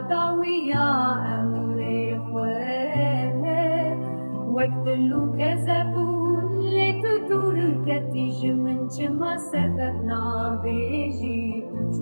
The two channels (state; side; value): inverted; both; correlation -1.00